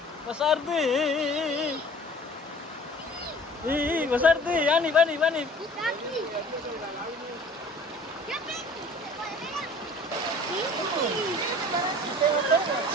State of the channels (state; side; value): normal; both; correlation 0.48